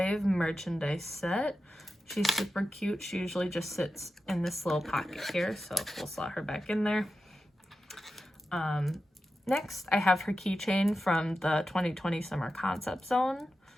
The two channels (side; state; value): both; normal; correlation 0.91